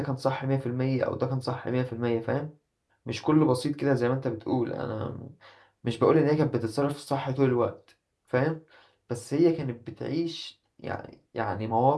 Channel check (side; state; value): both; identical; correlation 1.00